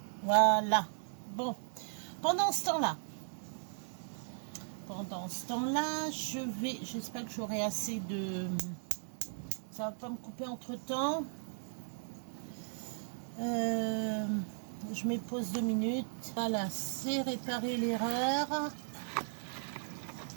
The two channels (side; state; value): left; silent; digital silence